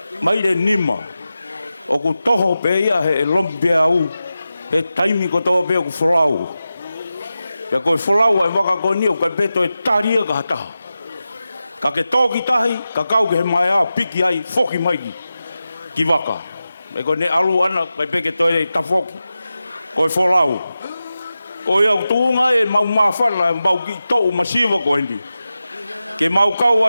maire nima. O ku toho pe ia he lompia au. He taimi ko toa pe o ku wholau. Ia koe wholau ai waka koe ni o kai peto e taria ka hataha. Ka ke tōki tahi, ka kau ke he mai a piki ai, whoki maiki, ki waka. Me koe ne alu ana, kai peke toi e tawhoki, koe wholau. Koe au tūnga e mau mawhana, mau ki tau masiwa koe ni. Ke mau kau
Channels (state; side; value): inverted; both; correlation -0.93